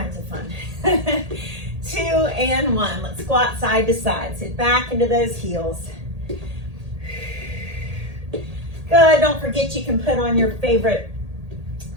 of fun. 2 and 1. Let's squat side to side. Sit back into those heels. Good. Don't forget you can put on your favorite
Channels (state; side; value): late; left; 1.8 ms